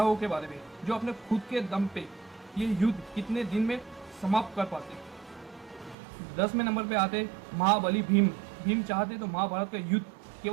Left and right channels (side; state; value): left; drops out; at 6.0 s